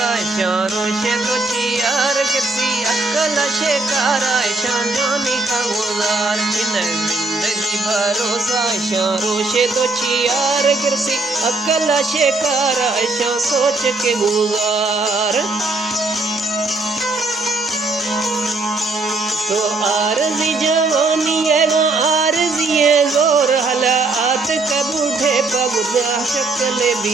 चारों से तो चियार गिरती अकल शिकारा शानी का गुजार छिन जिंदगी भरोसा चारों से तो चियार गिरती अकल शिकारा शा सोच के गुजार तो आरज़ी जवानी है आरज़ी है जोर हला आत कबूठे पगुदा शक्ल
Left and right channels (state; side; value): quieter; left; 3.2 dB